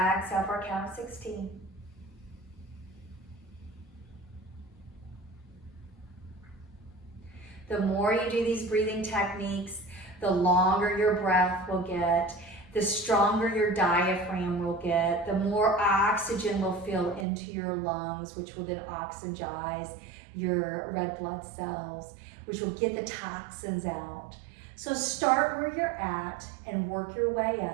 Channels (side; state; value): left; drops out; at 17.2 s